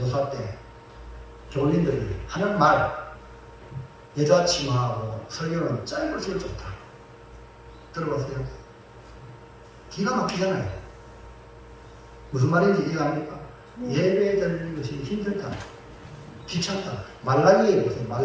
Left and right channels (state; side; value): identical; both; correlation 1.00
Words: 때 교인들이 하는 말, 여자 치마하고 설교는 짧을수록 좋다. 들어보세요. 기가 막히잖아요. 무슨 말인지 이해합니까? 예배 드리는 것이 힘들다. 귀찮다. 말라기에 보세요.